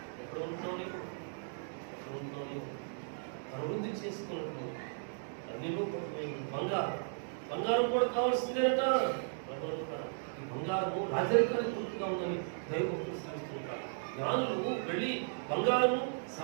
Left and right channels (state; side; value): silent; left; digital silence